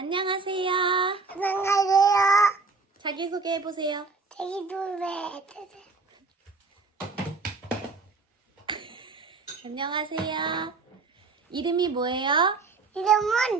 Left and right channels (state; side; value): quieter; left; 4.2 dB